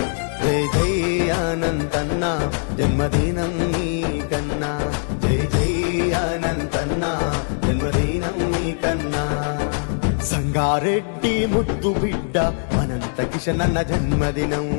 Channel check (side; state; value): right; silent; digital silence